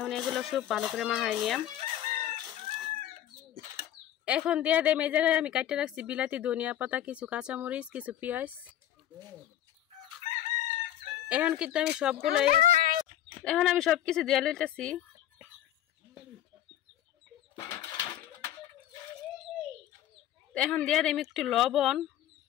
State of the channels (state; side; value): quieter; right; 12.0 dB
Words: এগুলো সব ভালো করে মাখাই নিলাম। এখন দিয়ে দেম এই জায়গায় আমি কাটতে রাখছি বিলাতি, ধনিয়া পাতা, কিছু কাঁচামরিচ, কিছু পেঁয়াজ। এখন কিন্তু আমি সবগুলো সবকিছু দিয়ে লইতেছি। এখন দিয়ে দেম একটু লবণ।